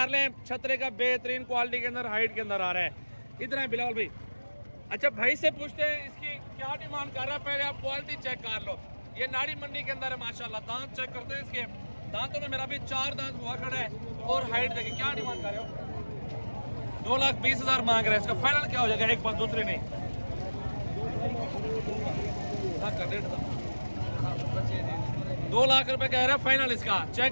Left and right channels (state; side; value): inverted; both; correlation -1.00